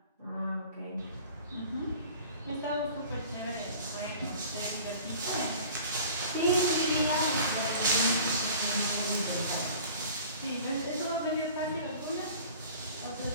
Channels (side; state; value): both; inverted; correlation -0.45